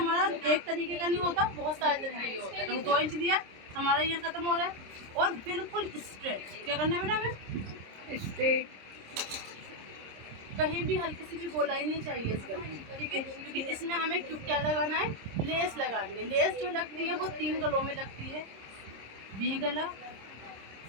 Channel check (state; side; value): late; left; 26 ms